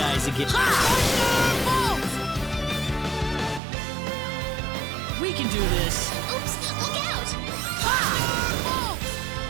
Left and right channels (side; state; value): left; drops out; at 3.6 s